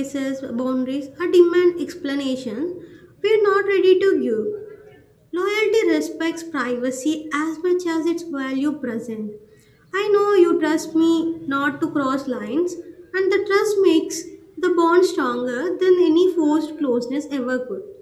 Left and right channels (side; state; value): both; identical; correlation 1.00